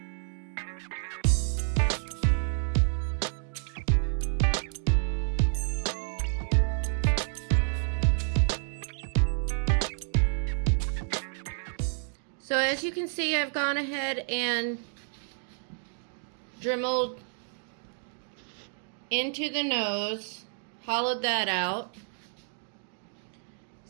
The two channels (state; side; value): silent; left; digital silence